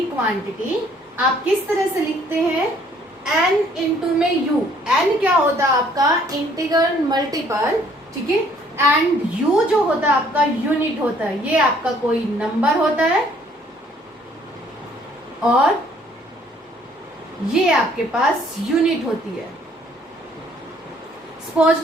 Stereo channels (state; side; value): normal; both; correlation 0.61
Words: क्वांटिटी आप किस तरह से लिखते हैं, n इंटू में u। n क्या होता है आपका इंटीग्रल मल्टीपल, ठीक है, एंड u जो होता है आपका यूनिट होता है। ये आपका कोई नंबर होता है और ये आपके पास यूनिट होती है। सपोज